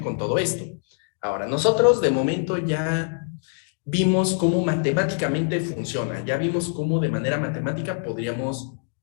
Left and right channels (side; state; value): right; silent; digital silence